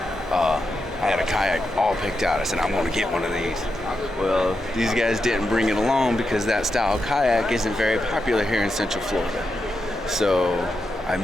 I had a kayak all picked out. I said, I'm going to get one of these. Well, these guys didn't bring it along because that style kayak isn't very popular here in Central Florida. So I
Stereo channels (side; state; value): both; normal; correlation 0.86